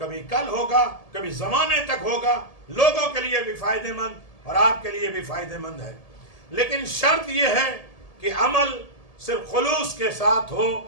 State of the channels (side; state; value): right; late; 1.7 ms